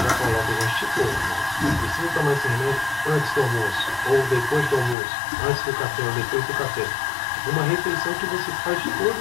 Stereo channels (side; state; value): right; drops out; at 5.0 s